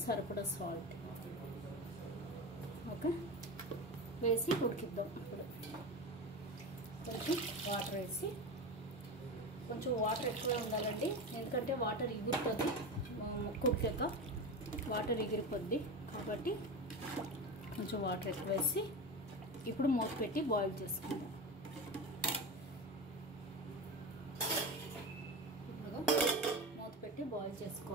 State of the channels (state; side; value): normal; both; correlation 0.23